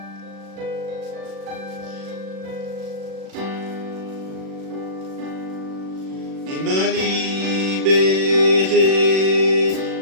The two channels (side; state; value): left; late; 37 ms